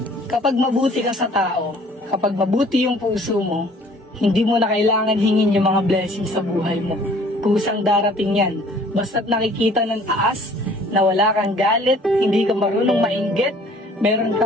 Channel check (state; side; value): normal; both; correlation 0.54